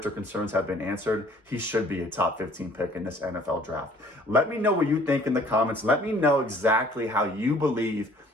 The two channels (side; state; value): both; normal; correlation 0.55